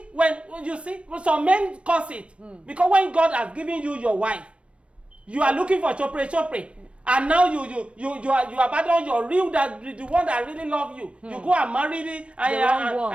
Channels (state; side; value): late; left; 0.060 ms